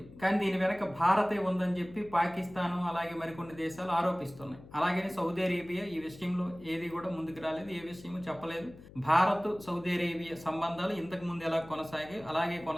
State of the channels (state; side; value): noise; left; hum, 19 dB below the sound